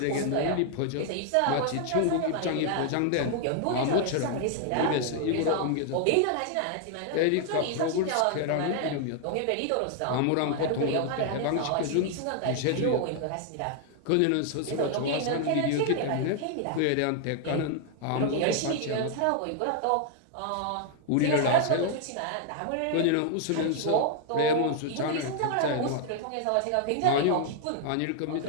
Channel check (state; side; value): different; both; correlation 0.00